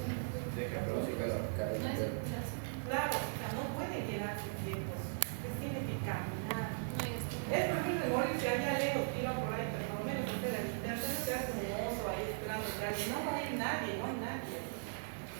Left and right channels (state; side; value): silent; left; digital silence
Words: Claro, o sea, no pueden quedarse quietos, pues tienen que caminar. Es preferible morirse allá lejos, tira por ahí, pero por lo menos hacer el internet, se hace como oso ahí esperando que alguien. No va a ir nadie, no hay nadie.